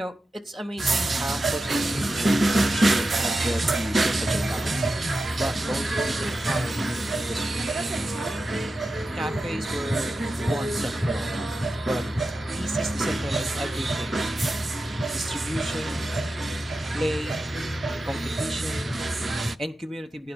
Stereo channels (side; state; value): both; normal; correlation 0.91